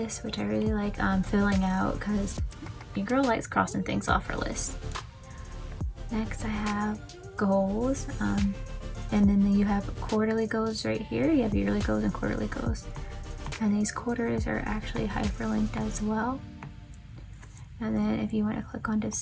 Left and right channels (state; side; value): identical; both; correlation 1.00